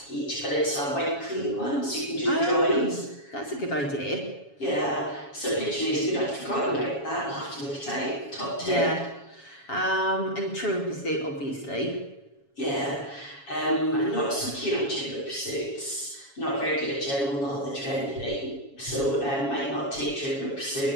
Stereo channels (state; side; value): late; right; 7.2 ms